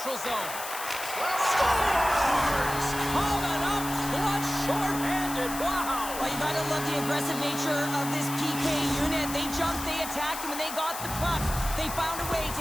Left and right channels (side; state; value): left; noise; hiss, 8 dB below the sound